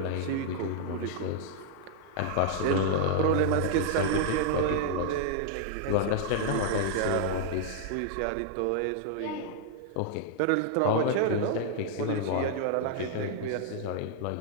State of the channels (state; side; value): different; both; correlation 0.00